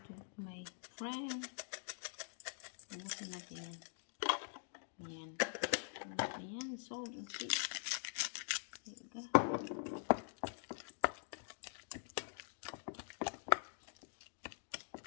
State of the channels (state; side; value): silent; right; digital silence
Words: my friend. Ubusin natin yan. Ayan. Ayan, salt and pepper. There you go.